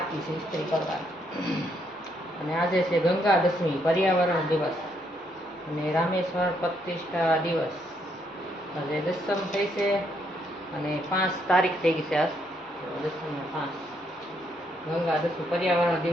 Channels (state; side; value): normal; both; correlation 0.74